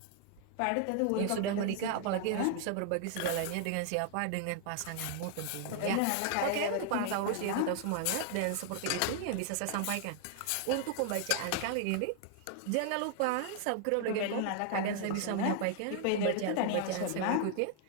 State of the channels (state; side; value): different; both; correlation 0.00